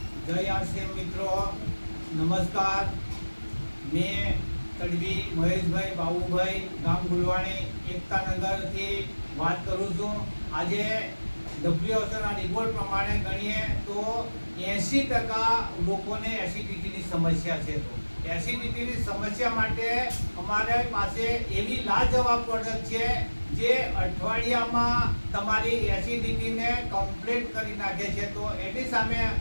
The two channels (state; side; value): inverted; both; correlation -1.00